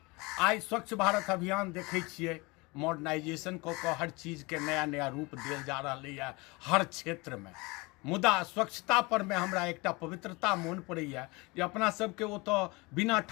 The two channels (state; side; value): quieter; right; 25.4 dB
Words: आई स्वच्छ भारत अभियान देखे छिए, मॉडर्नाइजेशन को हर चीज के नया नया रूप दिल जा रहा है हर क्षेत्र में। मुदा स्वच्छता पर में हमरा एकटा पवित्रता मोन पड़ैया जे अपना सबके वो तो बिना